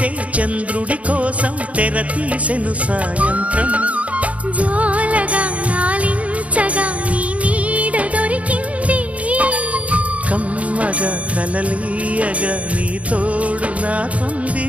చంద్రుడి కోసం తెర తీసెను సాయంత్రం జోలగా నాలించగా నీ నీడ దొరికింది కమ్మగా కలలీయగా నీ తోడు నాకుంది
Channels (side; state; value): left; late; 0.067 ms